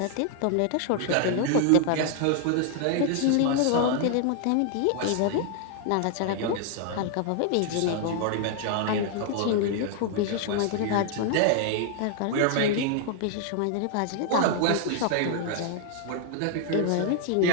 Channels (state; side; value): different; both; correlation 0.00